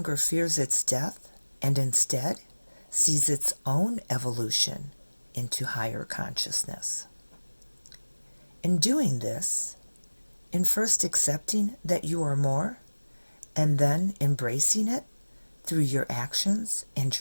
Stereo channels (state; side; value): inverted; both; correlation -1.00